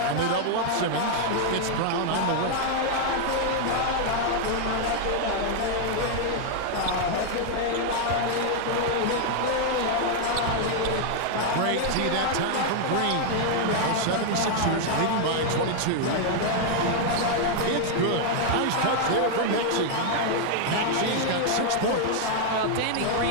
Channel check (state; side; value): different; both; correlation 0.00